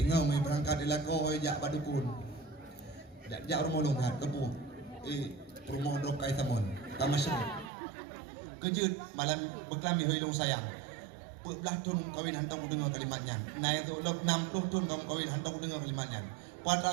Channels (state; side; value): drops out; left; at 7.7 s